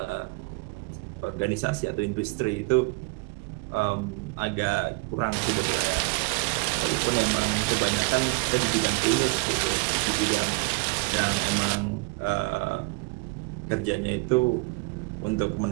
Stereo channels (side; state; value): left; quieter; 27.7 dB